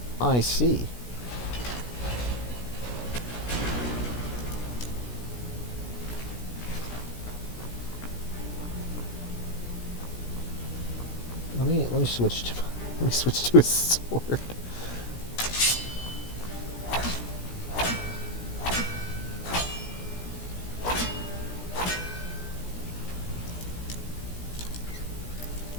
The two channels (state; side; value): late; right; 17 ms